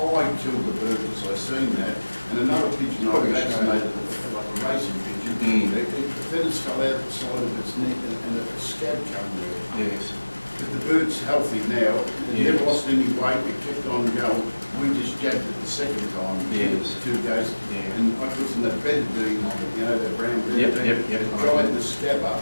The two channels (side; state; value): both; inverted; correlation -1.00